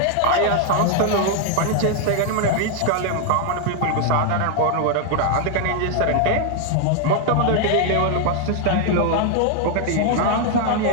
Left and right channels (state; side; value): different; both; correlation 0.00